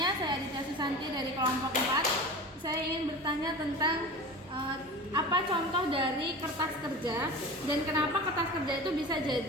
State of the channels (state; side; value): normal; both; correlation 0.33